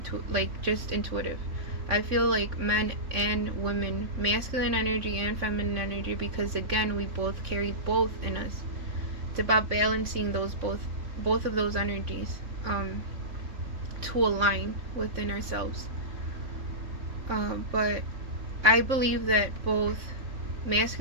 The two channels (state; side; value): late; left; 3.6 ms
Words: just intuitive. I feel like men and women, masculine energy and feminine energy, because again, we both carry both in us. It's about balancing those both of those energies to align within ourselves. But I believe that both